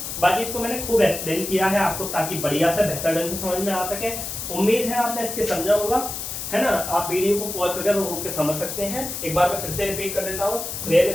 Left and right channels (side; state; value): left; noise; hiss, 6 dB below the sound